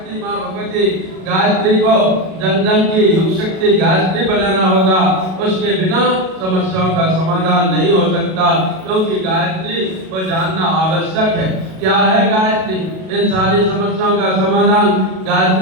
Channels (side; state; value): left; late; 37 ms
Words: मां भगवती गायत्री को जन जन की युग शक्ति गायत्री बनाना होगा। उसके बिना समस्याओं का समाधान नहीं हो सकता, क्योंकि गायत्री को जानना आवश्यक है। क्या है गायत्री? इन सारी समस्याओं का समाधान